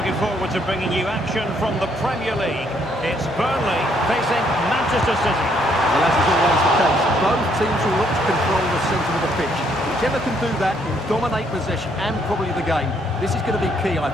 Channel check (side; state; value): both; normal; correlation 0.69